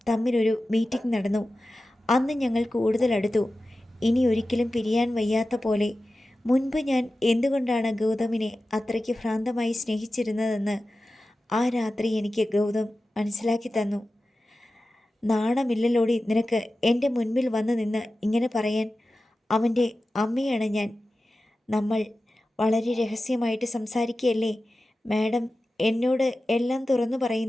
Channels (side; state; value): both; normal; correlation 0.94